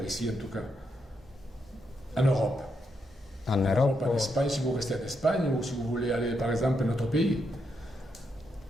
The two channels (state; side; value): normal; both; correlation 0.81